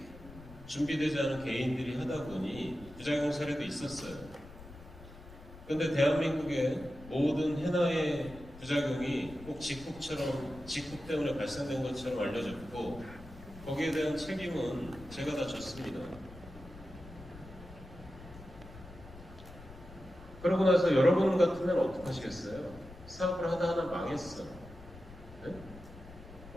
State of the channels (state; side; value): noise; left; rumble, 17 dB below the sound